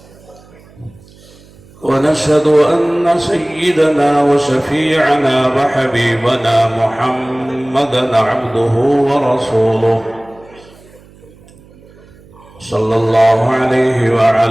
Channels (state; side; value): noise; right; hum, 25 dB below the sound